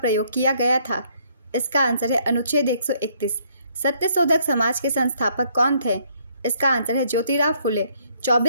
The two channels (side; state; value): both; inverted; correlation -0.67